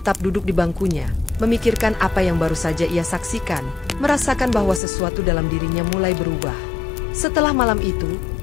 duduk di bangkunya, memikirkan apa yang baru saja ia saksikan, merasakan bahwa sesuatu dalam dirinya mulai berubah. Setelah malam itu,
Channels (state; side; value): drops out; right; at 4.8 s